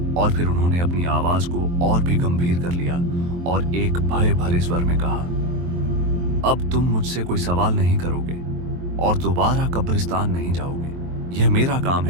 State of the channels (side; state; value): left; late; 23 ms